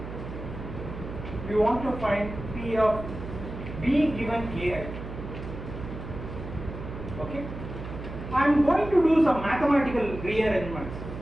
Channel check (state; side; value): noise; right; hum, 9 dB below the sound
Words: want to find P of B given AI. Okay. I am going to do some mathematical rearrangements.